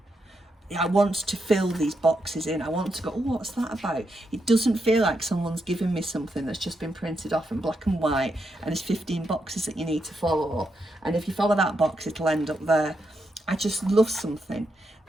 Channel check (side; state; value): both; normal; correlation 0.83